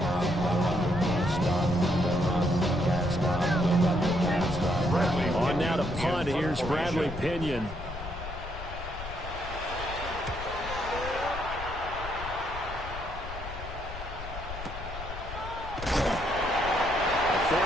On now to punt. Here's Bradley Pinion. A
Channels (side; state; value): left; noise; rumble, 10 dB below the sound